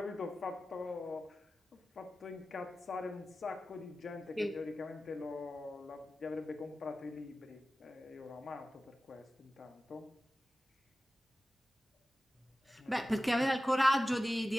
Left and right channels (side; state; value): both; normal; correlation 0.95